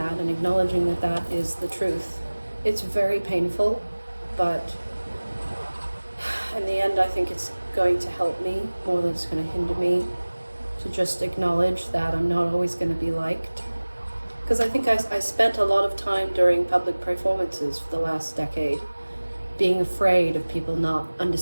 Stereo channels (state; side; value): inverted; both; correlation -1.00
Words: and acknowledging that that is the truth, it's very painful, but in the end I think it's going to help me more than it's going to hinder me, to just acknowledge that I'm not always going to be liked. Because I think I spent a lot of time during public performances for the last decade being afraid of people not